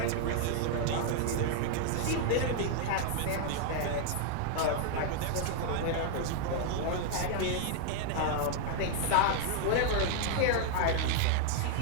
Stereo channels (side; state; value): both; different; correlation 0.00